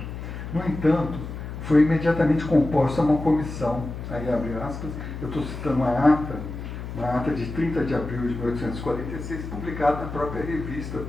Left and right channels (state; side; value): noise; left; hum, 8 dB below the sound